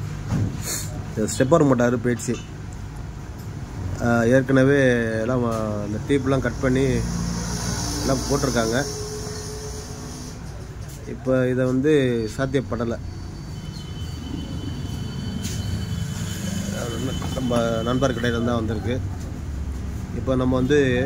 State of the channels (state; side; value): identical; both; correlation 1.00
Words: ஸ்டெப்பர் மோட்டார் போயிடுச்சு. ஏற்கனவே எல்லாம் இந்த டீப்லாம் கட் பண்ணி எல்லாம் போட்டிருக்காங்க. இப்போ இதை வந்து சாத்தியப்படலை. நம்ம நண்பர் கடையில் தான் வந்திருக்கு. இப்போ நம்ம வந்து